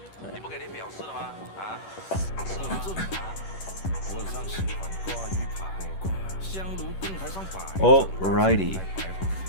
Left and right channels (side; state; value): right; late; 10 ms